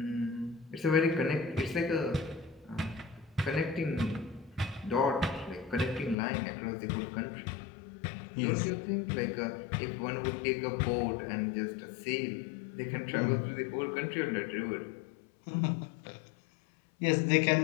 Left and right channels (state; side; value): drops out; right; at 6.2 s